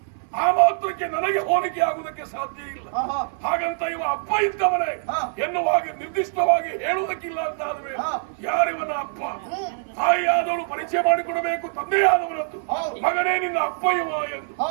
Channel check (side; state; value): left; silent; 58 dB below the other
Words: ಆ ಮಾತ್ರಕ್ಕೆ ನನಗೆ ಹೋಲಿಕೆ ಆಗುವುದಕ್ಕೆ ಸಾಧ್ಯ ಇಲ್ಲ. ಹಾಗಂತ ಇವ ಅಪ್ಪ ಇದ್ದವನೇ ಎನ್ನುವಾಗ ನಿರ್ದಿಷ್ಟವಾಗಿ ಹೇಳುವುದಕ್ಕಿಲ್ಲ ಅಂತ ಆದ್ರೆ ಯಾರಿವನ ಅಪ್ಪ? ತಾಯಿಯಾದವಳು ಪರಿಚಯ ಮಾಡಿಕೊಡಬೇಕು ತಂದೆಯಾದವರದ್ದು. ಮಗನೇ ನಿನ್ನ ಅಪ್ಪ ಇವ ಎಂದು.